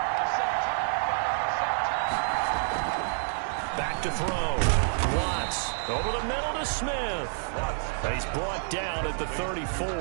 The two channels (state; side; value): silent; left; digital silence